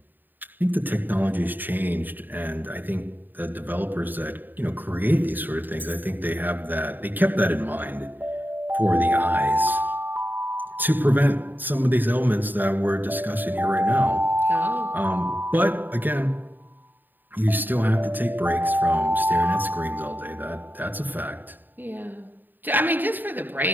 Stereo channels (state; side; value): late; left; 0.090 ms